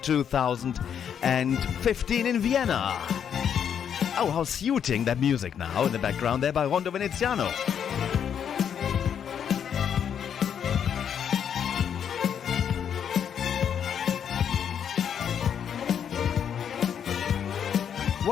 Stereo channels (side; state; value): right; quieter; 8.3 dB